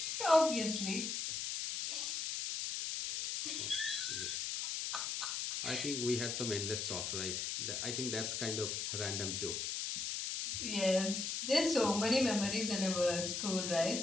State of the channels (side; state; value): left; noise; hiss, 2 dB below the sound